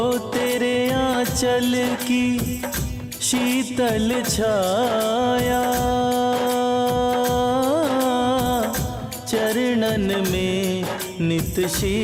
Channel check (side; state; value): both; identical; correlation 1.00